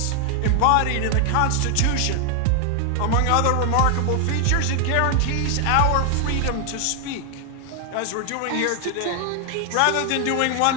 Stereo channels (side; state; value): both; different; correlation 0.00